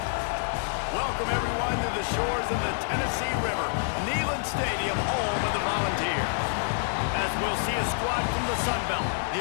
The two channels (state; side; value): silent; right; 60 dB below the other